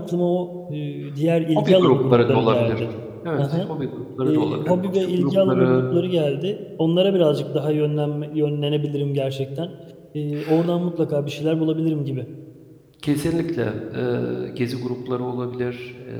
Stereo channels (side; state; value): both; identical; correlation 1.00